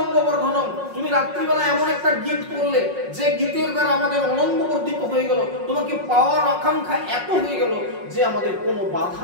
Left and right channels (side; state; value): left; late; 5.5 ms